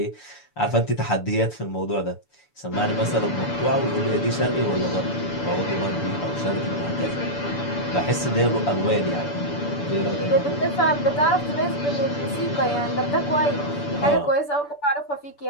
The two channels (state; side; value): late; right; 6.9 ms